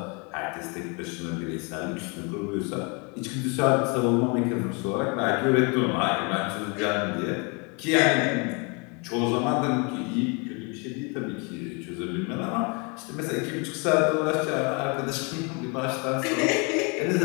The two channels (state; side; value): quieter; right; 32.3 dB